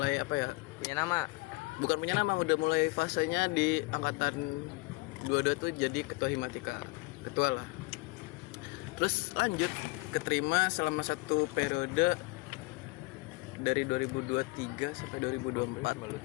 Punya nama. bukan punya nama, udah mulai fasenya di angkatan 22 tuh jadi ketua Himatika, ketua lah. Terus lanjut keterima selama satu periode dari 2023 sampai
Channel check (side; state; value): right; quieter; 25.3 dB